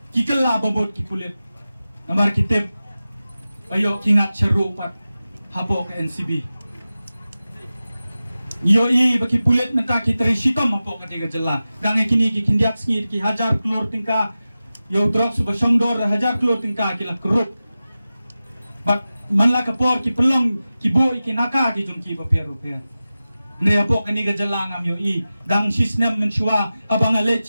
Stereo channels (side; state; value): both; inverted; correlation -0.95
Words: ki kala babot ki kulit namar kitip ayo kingat seru pat hapo ke NCB. Yo i baki pulet menta ki tresitom hapo ka tiga jela. Dange kini ki kindiak sngi ki hajar klor tingka yo drugs ba songdor hajar klor tingka ki la krup. Bak manla kapor ki pelong ki bo ki naka ki jong ki ba pero per. Ne hapo ka ni ga jela ngam yo i dang sisnem menchua abang ale